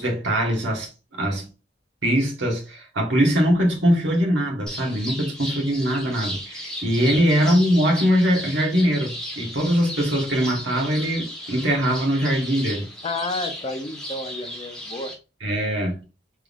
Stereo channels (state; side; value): normal; both; correlation 0.72